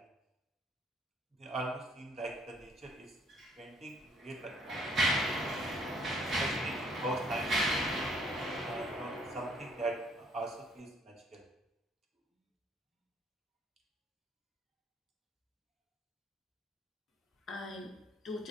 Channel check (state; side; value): normal; both; correlation 0.63